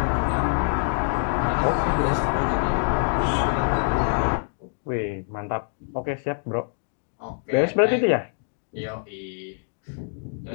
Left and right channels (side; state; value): right; silent; digital silence